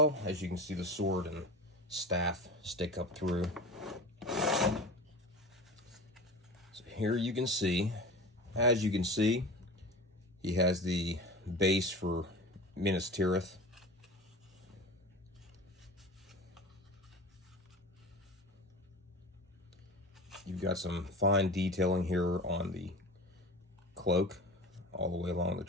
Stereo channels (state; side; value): normal; both; correlation 0.33